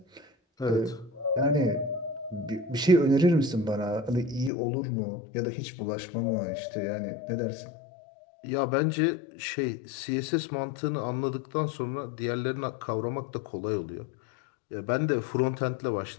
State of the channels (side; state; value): right; drops out; at 4.5 s